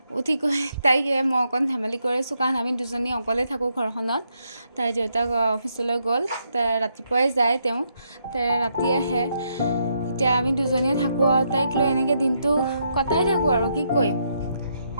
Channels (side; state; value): both; inverted; correlation -0.78